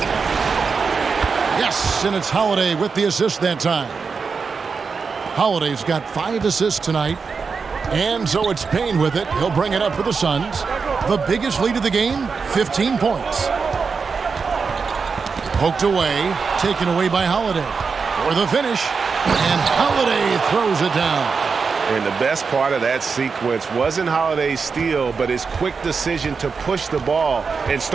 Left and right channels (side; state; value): left; quieter; 5.2 dB